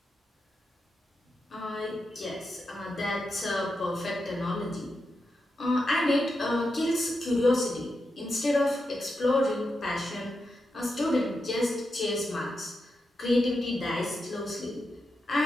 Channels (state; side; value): normal; both; correlation 0.87